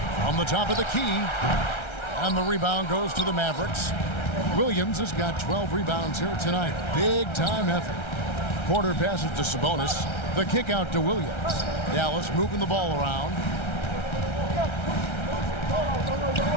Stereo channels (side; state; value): right; late; 1.3 ms